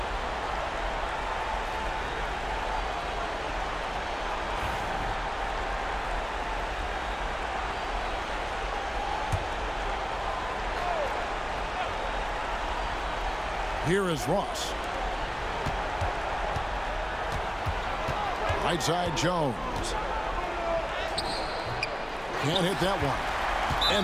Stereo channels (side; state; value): both; identical; correlation 1.00